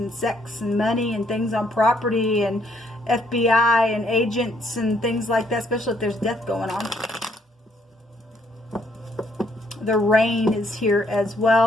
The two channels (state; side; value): normal; both; correlation 0.69